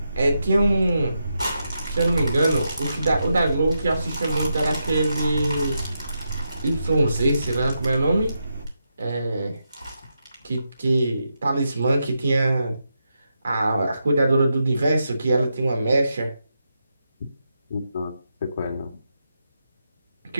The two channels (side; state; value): both; inverted; correlation -0.85